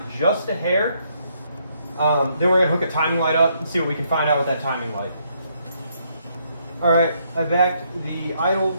just a hair. Then we're going to hook a timing light up and see what we can find out with that timing light. Alright, I backed the idle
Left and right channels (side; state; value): both; inverted; correlation -0.73